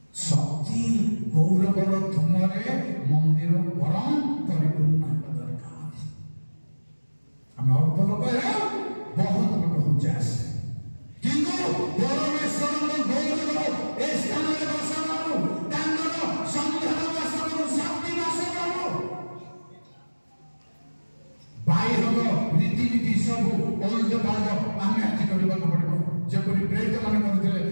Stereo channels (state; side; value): inverted; both; correlation -1.00